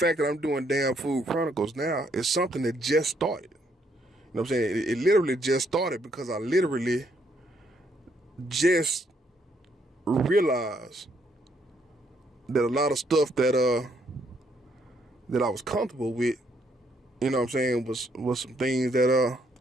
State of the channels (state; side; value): normal; both; correlation 0.72